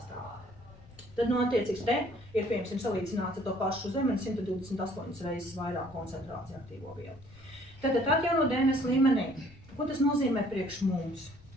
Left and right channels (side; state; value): left; noise; rumble, 22 dB below the sound